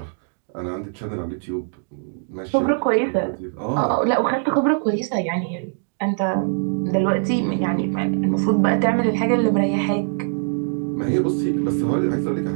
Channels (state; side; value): silent; left; 64 dB below the other